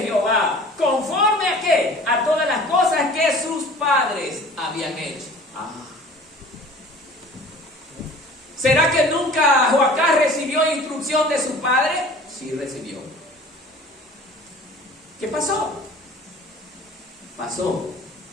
Jehová, conforme a qué, a todas las cosas que sus padres habían hecho. ¿Será que nunca Joacás recibió instrucción de su padre? Sí recibió. ¿Qué pasó? Pasó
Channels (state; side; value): normal; both; correlation 0.45